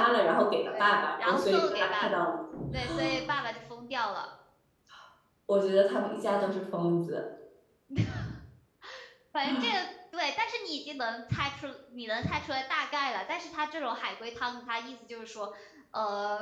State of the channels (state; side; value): identical; both; correlation 1.00